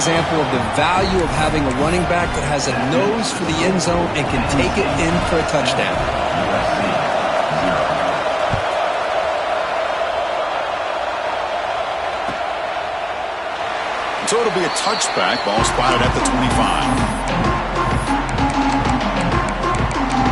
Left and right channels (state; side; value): identical; both; correlation 1.00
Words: of the value of having a running back that has a nose for the end zone and can take it in for a touchdown. So it'll be a touchback. Ball spotted at the 25.